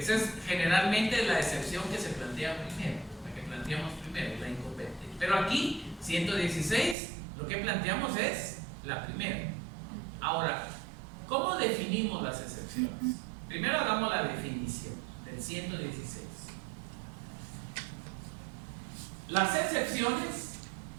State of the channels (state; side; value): drops out; left; at 7.0 s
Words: es generalmente la excepción que se plantea primero, la que planteamos primero, la incompetencia. Pero aquí, 116, lo que planteamos es la primera. Ahora, ¿cómo definimos las excepciones? Primero hagamos la definición del 116. Las excepciones